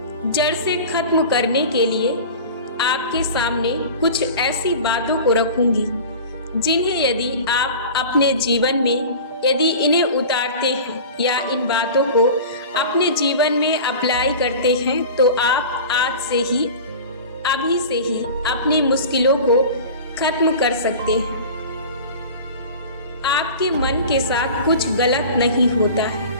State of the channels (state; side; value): inverted; both; correlation -0.36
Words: जड़ से खत्म करने के लिए आपके सामने कुछ ऐसी बातों को रखूंगी जिन्हें यदि आप अपने जीवन में यदि इन्हें उतारते हैं या इन बातों को अपने जीवन में अप्लाई करते हैं तो आप आज से ही अभी से ही अपनी मुश्किलों को खत्म कर सकते हैं। आपके मन के साथ कुछ गलत नहीं होता